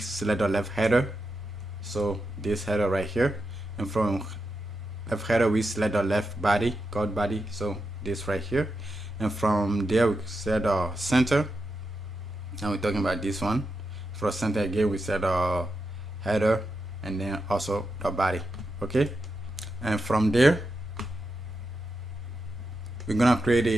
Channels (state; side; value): normal; both; correlation 0.87